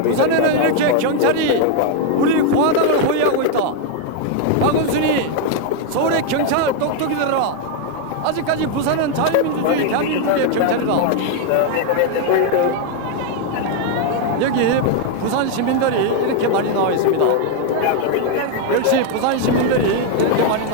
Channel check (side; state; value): both; different; correlation 0.01